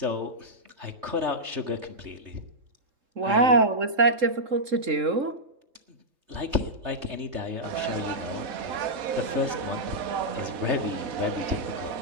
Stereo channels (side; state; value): left; late; 3.7 ms